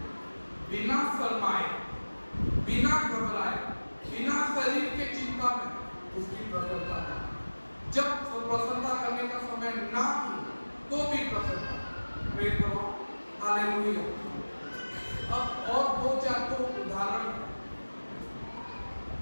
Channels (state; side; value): inverted; both; correlation -1.00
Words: बिना शर्माए, बिना घबराए, बिना शरीर के चिंता में उसकी प्रसन्नता करें। जब प्रसन्नता करने का समय ना हो तो भी प्रसन्नता, प्रेज़ द लॉर्ड, हालेलुया। अब और दो चार तो उदाहरण